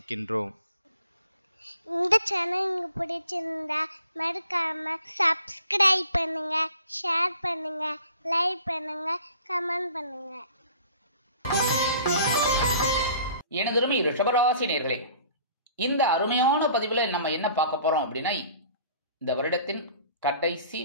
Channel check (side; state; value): both; inverted; correlation -0.51